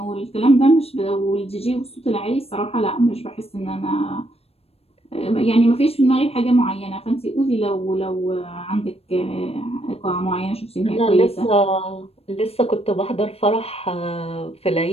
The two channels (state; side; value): late; right; 0.29 ms